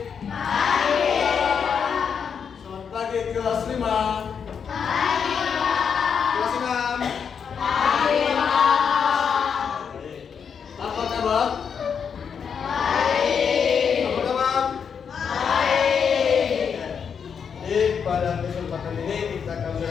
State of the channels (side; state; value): right; quieter; 6.9 dB